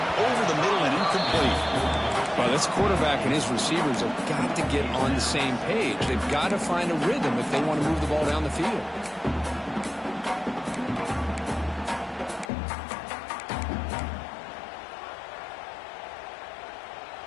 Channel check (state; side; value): drops out; right; at 12.5 s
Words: Over the middle and incomplete. Well, this quarterback and his receivers have got to get on the same page. They've got to find a rhythm if they want to move the ball down the field.